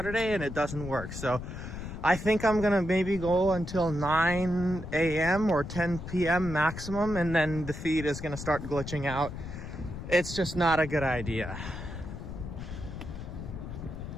and it doesn't work. So I think I'm going to maybe go until 9 a.m. or 10 p.m. maximum, and then the feed is going to start glitching out. It's just not a good idea.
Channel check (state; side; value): noise; left; rumble, 9 dB below the sound